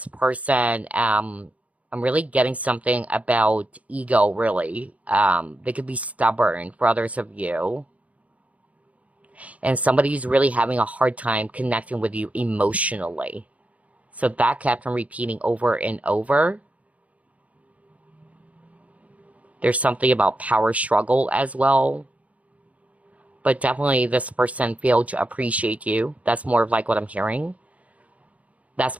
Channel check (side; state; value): left; late; 0.067 ms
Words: person, I'm really getting something about ego, really. They could be stubborn for others of you. And somebody's really having a hard time connecting with you emotionally. So that kept on repeating over and over. There's something about power struggle as well. But definitely this person failed to appreciate you. That's more of like what I'm hearing. That's